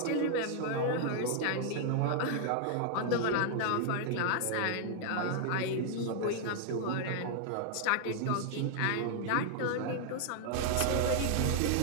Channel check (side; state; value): both; different; correlation 0.00